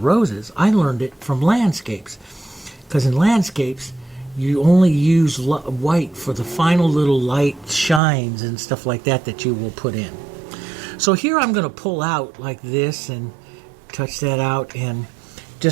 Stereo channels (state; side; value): drops out; left; at 8.0 s